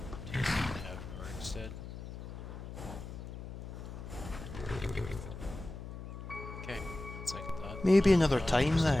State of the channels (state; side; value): noise; left; hum, 10 dB below the sound